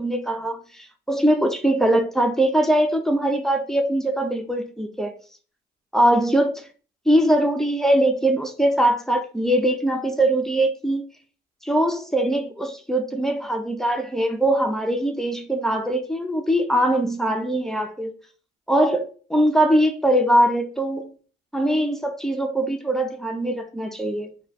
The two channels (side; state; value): both; normal; correlation 0.77